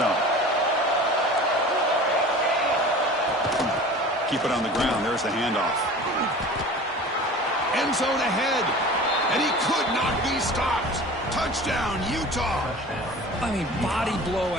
Keep it on the ground. There's the handoff. End zone ahead. And he could not be stopped. Touchdown, Utah. I mean, body blow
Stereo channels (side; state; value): both; normal; correlation 0.39